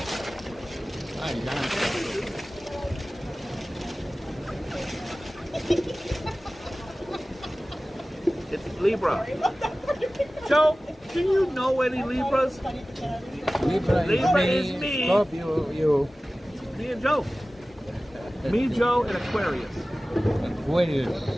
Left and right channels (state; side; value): normal; both; correlation 0.97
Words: It's Libra. Joe, do you know any Libras? Libra is me. Scorpio, you. Me and Joe. Me, Joe, and Aquarius. Aquarius.